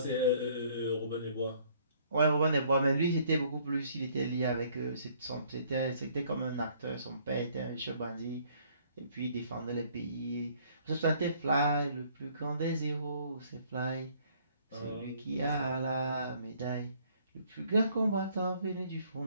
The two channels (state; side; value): inverted; both; correlation -0.62